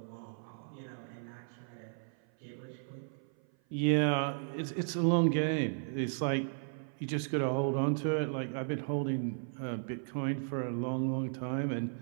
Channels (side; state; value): left; silent; 54 dB below the other